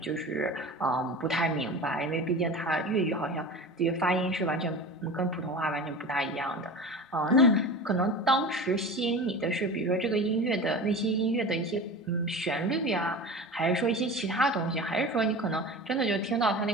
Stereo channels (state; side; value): normal; both; correlation 0.32